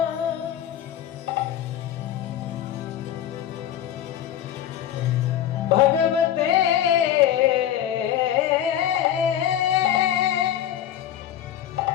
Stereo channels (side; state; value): right; quieter; 10.9 dB